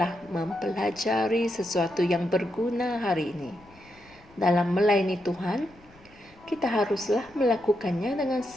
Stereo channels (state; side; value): noise; left; rumble, 27 dB below the sound